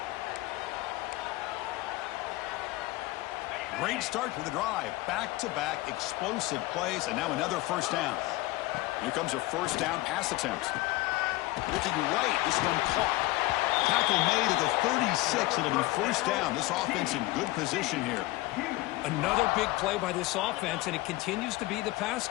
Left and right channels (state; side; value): quieter; right; 19.4 dB